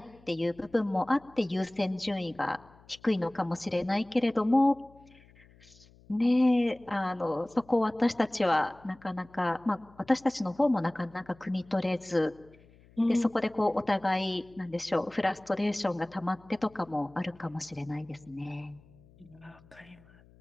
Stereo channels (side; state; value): left; noise; hum, 26 dB below the sound